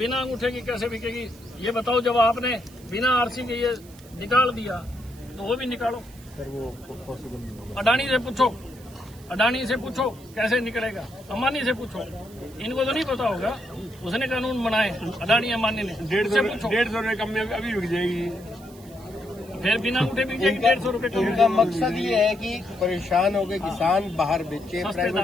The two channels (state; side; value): noise; right; hiss, 23 dB below the sound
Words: अंगूठे की कैसे बिकेगी ये बताओ? जब आपने बिना आरसी के ये निकाल दिया तो वो भी निकालो। सर वो पॉसिबल नहीं होगा। अडानी से पूछो, अडानी से पूछो कैसे निकलेगा, अंबानी से पूछो, इनको तो नहीं पता होगा, उसने कानून बनाए अडानी अंबानी ने। 150 रुपए कम में अभी बिक जाएगी, फिर बिना अंगूठे बिक जाएगी 150 रुपए कम। उनका मकसद ये है कि परेशान हो गए किसान बाहर बेचे, सस्ते